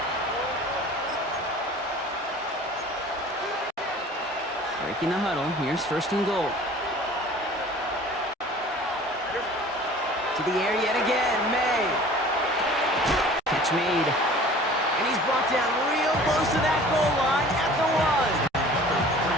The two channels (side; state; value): both; normal; correlation 0.46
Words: Breaking the huddle, here's 1st and goal. To the air yet again, May. Catch made. And he's brought down real close to that goal line at the 1.